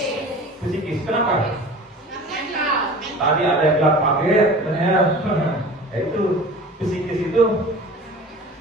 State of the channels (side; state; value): both; normal; correlation 0.40